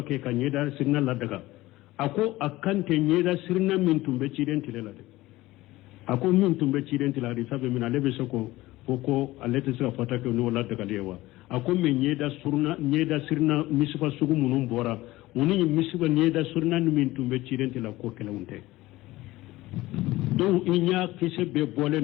ke kanyeda sirina la daga ako akante nyeda sirina min tumbe cidentile la de ako min tumbe cidentile la sabe min alebe soko ko alete sira fatawa ke no la daga lewa ako me nyeda sirina misfa sugu munum bora uni misba nyeda sirina min tumbe cidentile la ko kala unte do inya kise be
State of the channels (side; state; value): right; quieter; 18.1 dB